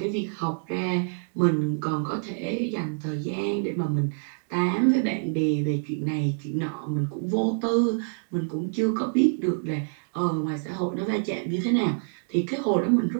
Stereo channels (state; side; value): silent; left; digital silence